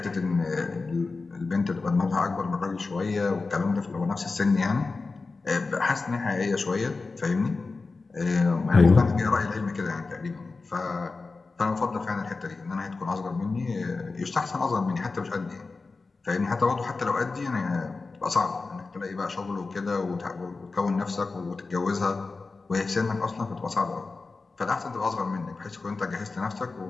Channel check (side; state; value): right; quieter; 4.0 dB